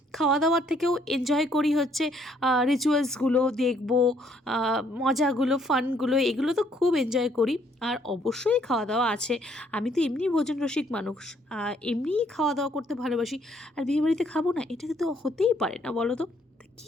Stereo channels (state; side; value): normal; both; correlation 0.67